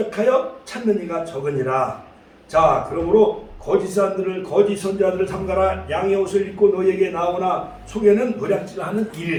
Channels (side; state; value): both; identical; correlation 1.00